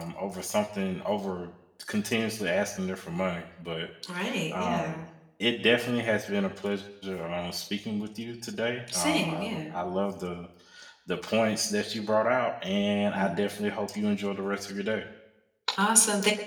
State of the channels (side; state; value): both; identical; correlation 1.00